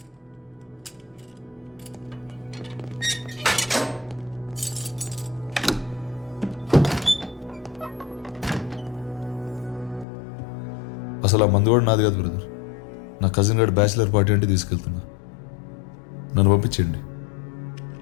అసలు ఆ మందు కూడా నాది కాదు బ్రదర్. నా కజిన్ గారు బ్యాచిలర్ పార్టీ అంటే తీసుకెళ్తున్నా, నన్ను పంపించండి.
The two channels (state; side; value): drops out; right; at 10.1 s